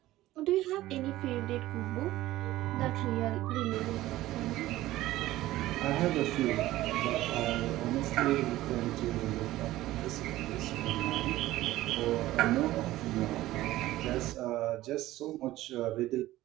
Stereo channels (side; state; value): left; quieter; 16.0 dB